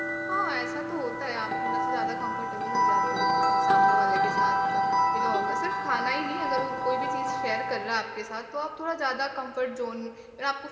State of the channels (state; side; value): identical; both; correlation 1.00